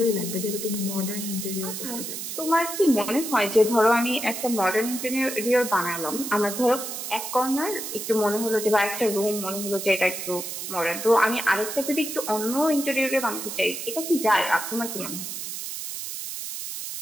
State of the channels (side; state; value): right; noise; hiss, 6 dB below the sound